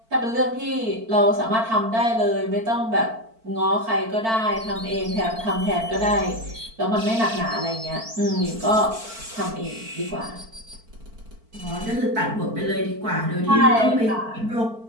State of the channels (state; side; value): late; left; 4.5 ms